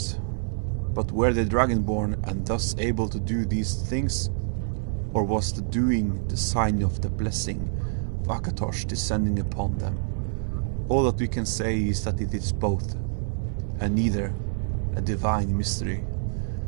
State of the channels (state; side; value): silent; left; 56 dB below the other